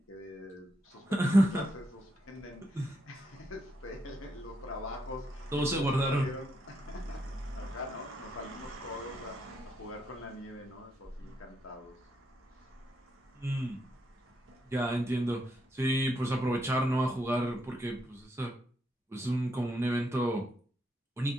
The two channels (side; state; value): both; normal; correlation 0.79